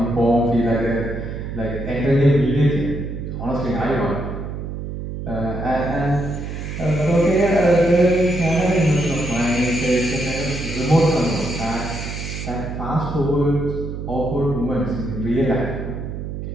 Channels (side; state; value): right; noise; hum, 7 dB below the sound